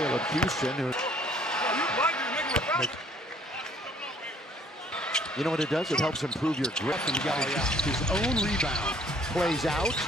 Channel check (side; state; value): both; normal; correlation 0.59